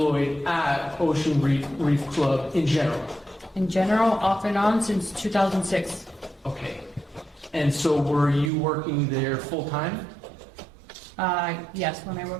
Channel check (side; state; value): left; drops out; at 8.5 s